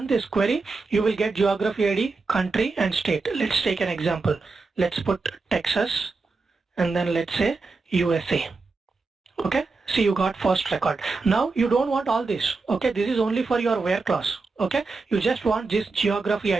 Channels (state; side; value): quieter; left; 4.0 dB